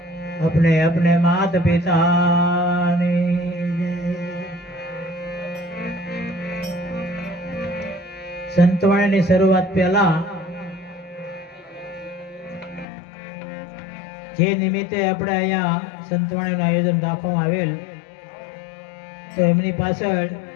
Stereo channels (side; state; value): right; drops out; at 12.9 s